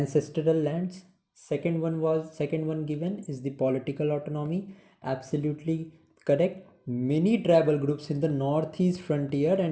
lands. Second one given is the political autonomy. Absolutely correct. Many tribal groups in the northeast frontier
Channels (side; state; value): both; identical; correlation 1.00